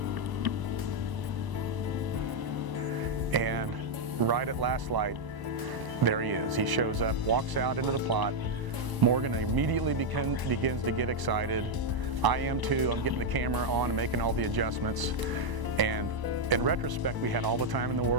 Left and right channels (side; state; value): left; late; 1.0 ms